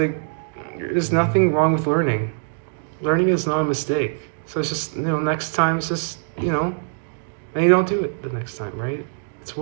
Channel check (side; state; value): left; silent; digital silence